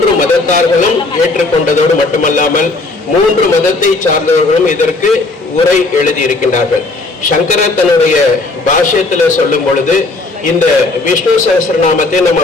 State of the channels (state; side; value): quieter; right; 3.3 dB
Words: மதத்தார்களும் ஏற்றுக்கொண்டதோடு மட்டுமல்லாமல் 3 மதத்தை சார்ந்தவர்களும் இதற்கு உரை எழுதி இருக்கின்றார்கள். சங்கரர் தன்னுடைய பாஷ்யத்துல சொல்லும் பொழுது இந்த விஷ்ணு சகஸ்ரநாமத்தை நம்ம